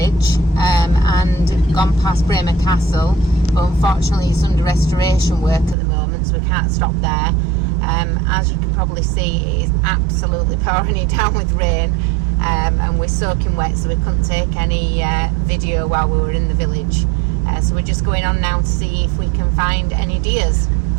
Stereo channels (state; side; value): drops out; left; at 5.8 s